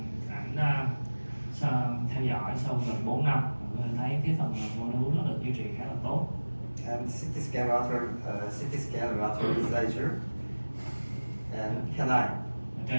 Ảnh theo dõi sau gần 4 năm, mình thấy cái phần mô đun nó được duy trì khá là tốt. And CT scan lateral incisor and canine. Ở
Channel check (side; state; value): both; inverted; correlation -1.00